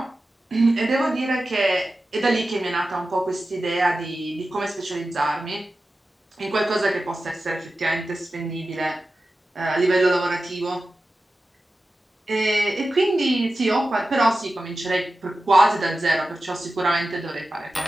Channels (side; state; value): both; normal; correlation 0.93